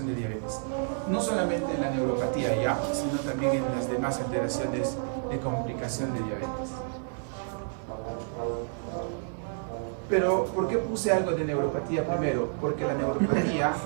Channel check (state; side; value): silent; left; 58 dB below the other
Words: de diabetes. No solamente en la neuropatía ya, sino también en las demás alteraciones de complicación de diabetes. Pero, ¿por qué puse algo de neuropatía primero? Porque la neuropatía,